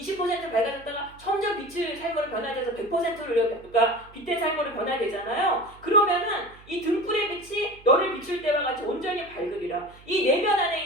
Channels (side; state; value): right; noise; hum, 23 dB below the sound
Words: 밝아졌다가 점점 빛의 삶으로 변화돼서 100%로 우리가 빛된 삶으로 변화되잖아요. 그러면은 이 등불의 빛이 너를 비출 때와 같이 온전히 밝으리라. 이 내면 안에